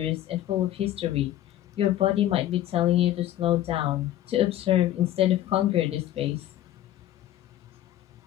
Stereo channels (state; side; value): quieter; right; 13.1 dB